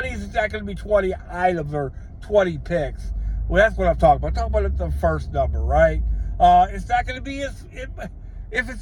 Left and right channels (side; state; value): both; identical; correlation 1.00